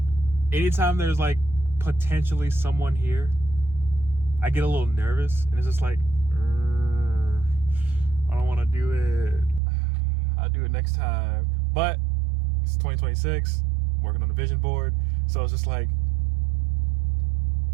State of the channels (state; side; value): drops out; left; at 9.6 s